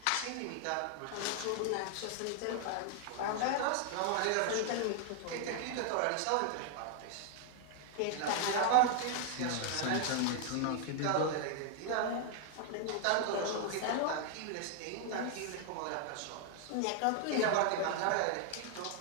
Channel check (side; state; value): both; different; correlation 0.00